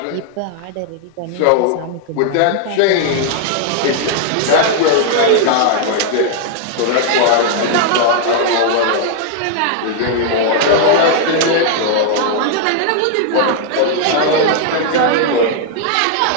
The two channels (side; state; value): both; different; correlation 0.00